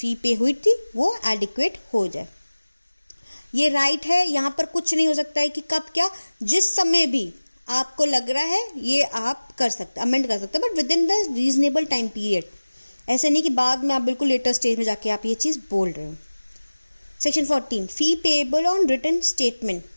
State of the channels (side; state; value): both; inverted; correlation -1.00